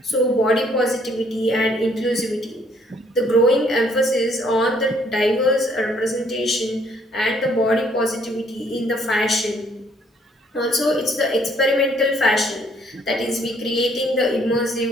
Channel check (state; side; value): normal; both; correlation 0.65